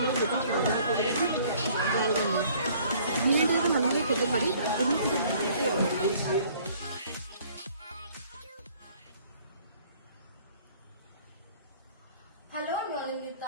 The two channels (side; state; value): both; inverted; correlation -0.57